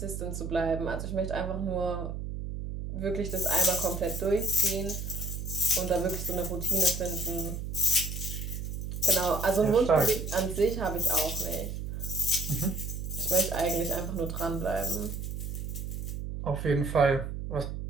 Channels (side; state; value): right; noise; hum, 6 dB below the sound